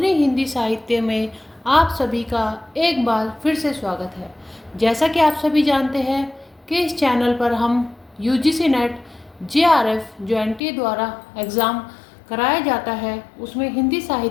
हिंदी साहित्य में आप सभी का एक बार फिर से स्वागत है। जैसा कि आप सभी जानते हैं कि इस चैनल पर हम यूजीसी नेट जेआरएफ जो एनटीए द्वारा एग्ज़ाम कराया जाता है उसमें हिंदी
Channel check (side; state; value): right; drops out; at 10.6 s